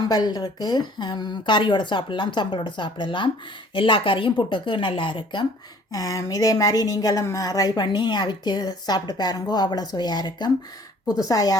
இருக்குது, கறியோடு சாப்பிடலாம், சம்பளோடு சாப்பிடலாம். எல்லா கறியும் புட்டுக்கு நல்லா இருக்கும். இதே மாதிரி நீங்களும் ட்ரை பண்ணி அவிச்சு சாப்பிட்டு பாருங்கோ, அவ்வளோ சுவையாக இருக்கும். புதுசாக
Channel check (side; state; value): both; normal; correlation 0.54